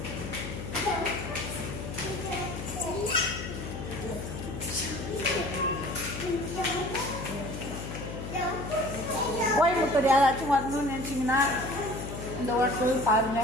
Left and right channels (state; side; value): noise; left; hum, 7 dB below the sound